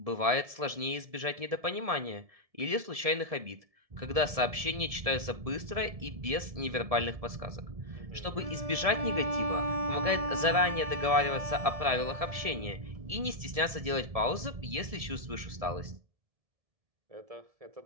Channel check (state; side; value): late; left; 1.7 ms